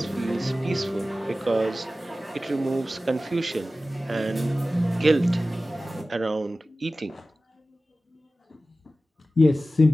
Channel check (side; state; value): both; normal; correlation 0.96